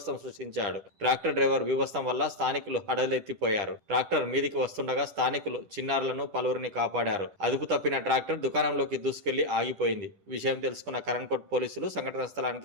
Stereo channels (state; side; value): late; left; 10 ms